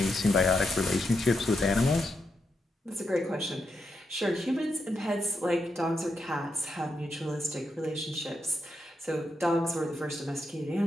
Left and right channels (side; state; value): both; normal; correlation 0.84